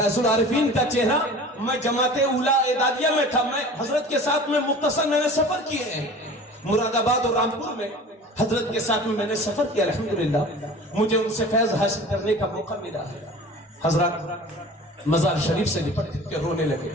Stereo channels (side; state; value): both; normal; correlation 0.41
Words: العارفین کا چہرہ، میں جماعت اولیاء اعدادیہ میں تھا، میں حضرت کے ساتھ میں مختصر میں نے سفر کیے ہیں مراد آباد اور رامپور میں. حضرت کے ساتھ میں نے سفر کیا، الحمدللہ مجھے ان سے فیض حاصل کرنے کا موقع ملا ہے. حضرات مزار شریف سے لپٹ کے رونے لگے.